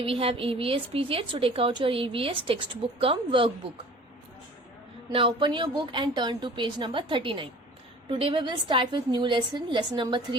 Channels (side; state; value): both; normal; correlation 0.45